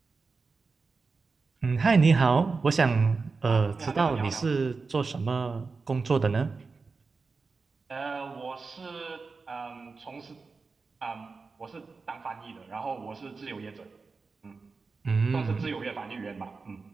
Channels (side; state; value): left; quieter; 4.4 dB